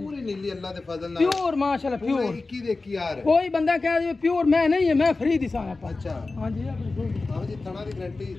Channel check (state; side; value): quieter; right; 3.6 dB